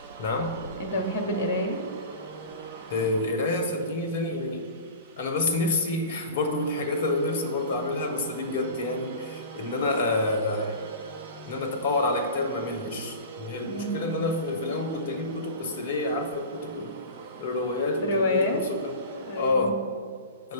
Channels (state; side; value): inverted; both; correlation -0.35